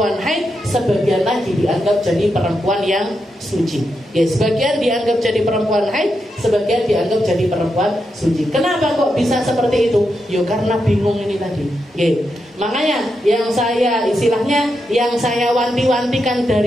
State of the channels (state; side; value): normal; both; correlation 0.85